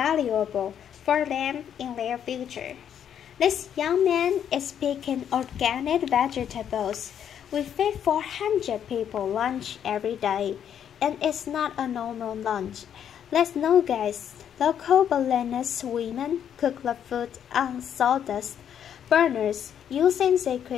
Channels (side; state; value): right; quieter; 9.0 dB